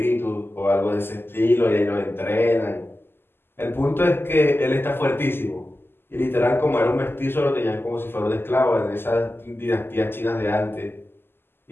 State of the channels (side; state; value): right; late; 0.11 ms